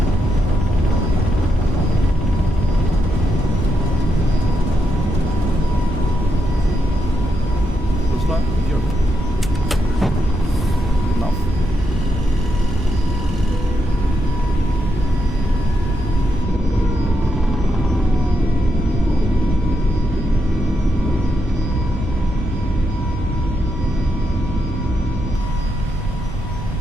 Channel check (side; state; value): both; normal; correlation 0.82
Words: Close line, here. Enough.